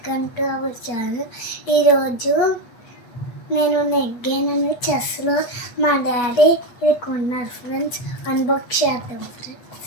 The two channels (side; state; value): right; late; 8.2 ms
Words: to our channel. ఈరోజు నేను నెగ్గానని చెస్లో మా డాడీ ఇది కొన్నారు ఫ్రెండ్స్. అన్బాక్స్ చేద్దాం